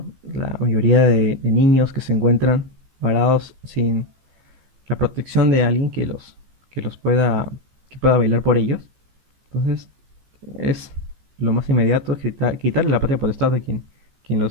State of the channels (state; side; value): late; left; 15 ms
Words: La mayoría de niños que se encuentran varados sin la protección de alguien que los pueda, que pueda velar por ellos. Entonces, es lo más inmediato, es quitarle la patria potestad a quien